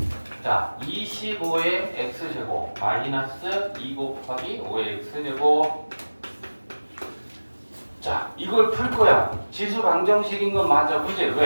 자, 25의 x제곱 마이너스 2 곱하기 5의 x제곱 자, 이걸 풀 거야. 지수 방정식인 건 맞아. 그지?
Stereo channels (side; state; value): both; inverted; correlation -1.00